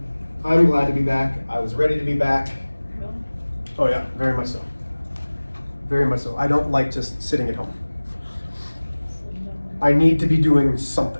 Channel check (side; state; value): both; inverted; correlation -1.00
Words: I'm glad to be back. I was ready to be back. Oh yeah, very much so. Very much so. I don't like just sitting at home. I need to be doing